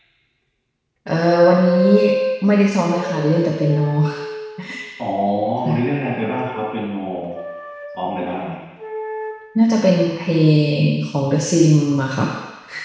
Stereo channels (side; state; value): both; identical; correlation 1.00